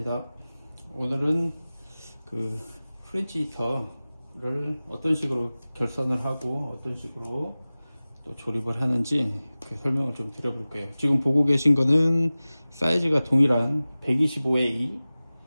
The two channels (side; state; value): both; inverted; correlation -0.98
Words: 오늘은 그 프렌치 히터를 어떤 식으로 결선을 하고 어떤 식으로 또 조립을 하는지 그 설명을 좀 드려볼게요. 지금 보고 계신 거는 사이즈가 동일한 125A